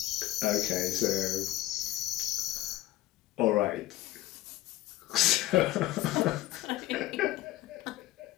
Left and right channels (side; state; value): right; quieter; 15.5 dB